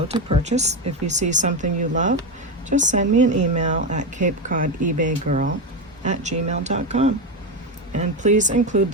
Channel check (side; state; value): both; normal; correlation 0.13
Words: to purchase. If you see something you love, just send me an email at CapeCodEbayGirl@gmail.com. And please include